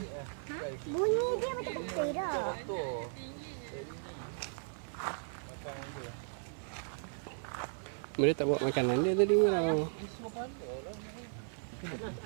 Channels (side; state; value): left; silent; 54 dB below the other